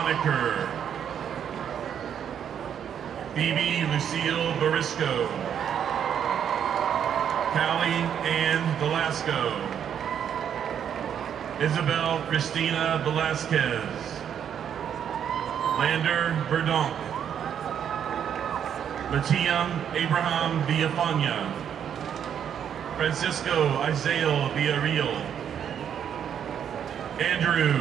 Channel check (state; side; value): quieter; left; 8.7 dB